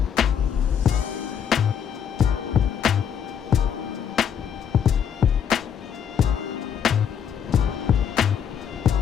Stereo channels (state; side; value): quieter; right; 8.1 dB